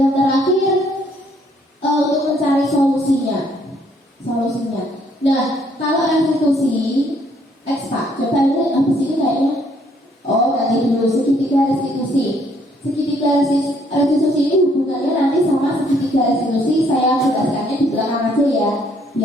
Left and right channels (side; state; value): both; normal; correlation 0.66